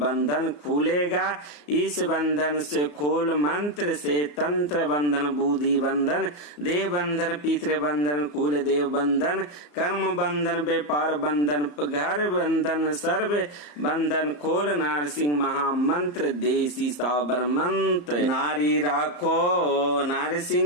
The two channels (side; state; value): right; late; 34 ms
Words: खुलेगा। इस बंधन से खोल मंत्र से तंत्र बंधन, बुद्धि बंधन, देव बंधन, पितृ बंधन, कुल देव बंधन, कर्म बंधन, व्यापार बंधन, घर बंधन, सर्व बंधन खोल। नारसिंह महामंत्र देसी साबर मंत्र। नारी राखो